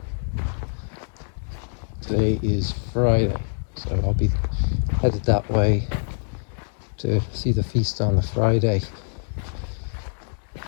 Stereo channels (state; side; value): silent; right; digital silence